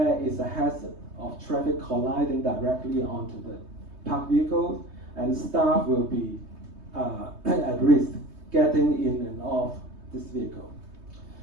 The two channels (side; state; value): left; late; 3.2 ms